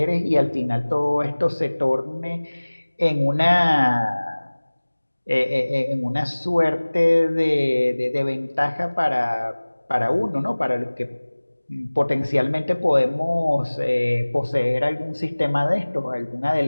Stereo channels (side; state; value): both; inverted; correlation -1.00